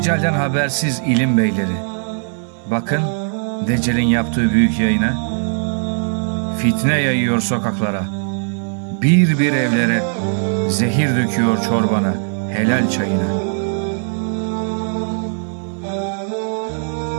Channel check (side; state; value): left; silent; digital silence